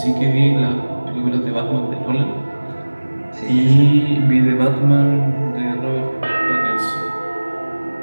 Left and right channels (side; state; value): both; inverted; correlation -1.00